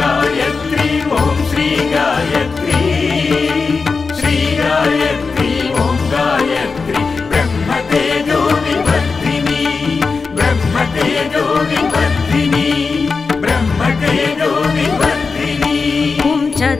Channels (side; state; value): right; quieter; 4.6 dB